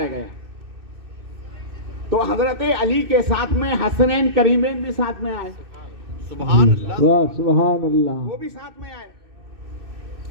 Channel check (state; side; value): late; left; 2.6 ms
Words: گیا تو حضرت علی کے ساتھ میں حسنین کریمین بھی ساتھ میں آئے، سبحان اللہ۔ واہ سبحان اللہ، وہ بھی ساتھ میں آئے،